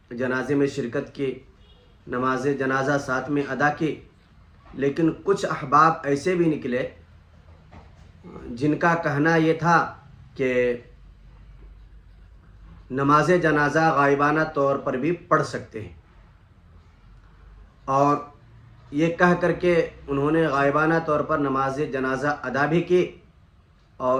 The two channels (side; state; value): both; identical; correlation 1.00